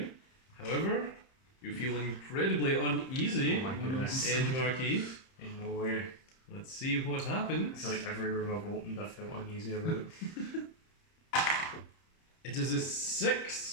However, you feel incredibly uneasy, Oh my goodness. Edge Marquee. Ain't no way. Let's see what I happens. feel like every room I've opened I felt uneasy about. It is a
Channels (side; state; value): right; late; 30 ms